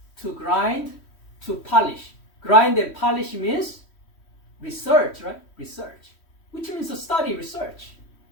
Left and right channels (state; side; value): late; right; 3.1 ms